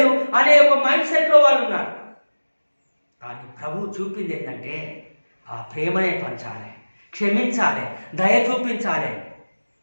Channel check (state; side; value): inverted; both; correlation -1.00